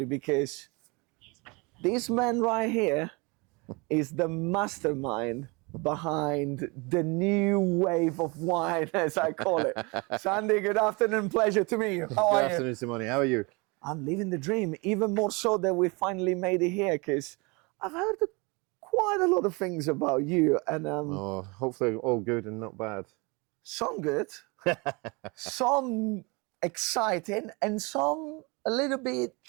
because this man right here is the mastermind behind the new wave of wine, as I call it. Sandy, good afternoon, pleasure to meet you. How are you? Good afternoon, Simone. How are you? I'm living the dream, even more so that we finally made it here, because I've heard quite a lot of things about you, and Hopefully all good and not bad. some good, some exciting, and some a little bit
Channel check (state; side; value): quieter; left; 28.2 dB